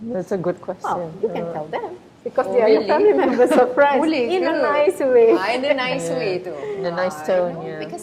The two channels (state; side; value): identical; both; correlation 1.00